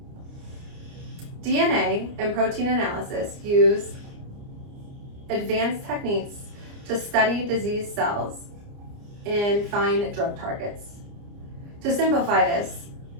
DNA and protein analysis use advanced techniques to study disease cells and find drug targets. To simplify this,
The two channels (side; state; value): left; late; 29 ms